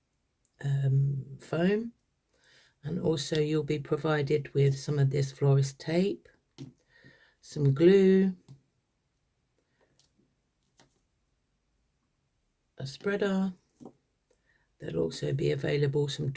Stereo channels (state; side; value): identical; both; correlation 1.00